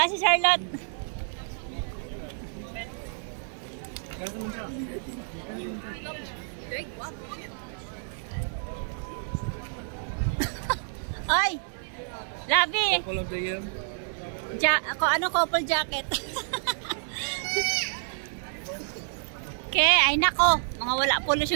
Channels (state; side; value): silent; left; 59 dB below the other